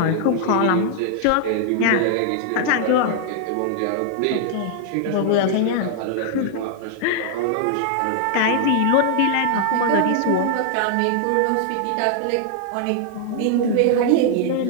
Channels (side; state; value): both; different; correlation 0.00